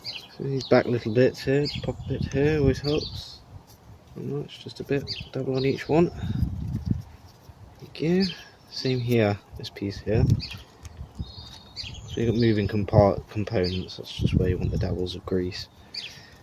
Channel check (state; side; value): identical; both; correlation 1.00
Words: So these back little bits here, pop a bit here, always helps. Not much, just a bit, double on each one. Again, same here, this piece here. So you've got moving components, that's just where you want the dabbles of grease.